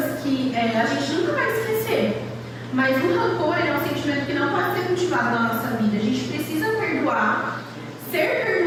que a gente nunca vai esquecer. Mas o rancor é um sentimento que não pode ser cultivado na nossa vida. A gente precisa perdoar, ser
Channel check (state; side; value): identical; both; correlation 1.00